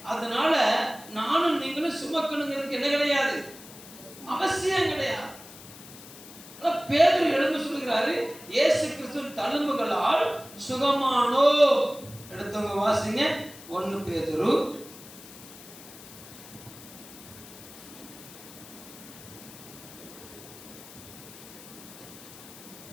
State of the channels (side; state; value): left; noise; hiss, 17 dB below the sound